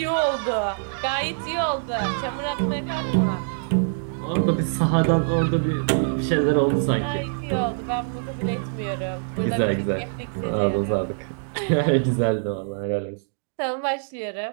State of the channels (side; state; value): left; silent; digital silence